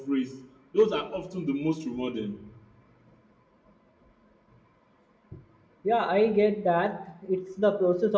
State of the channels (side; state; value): both; identical; correlation 1.00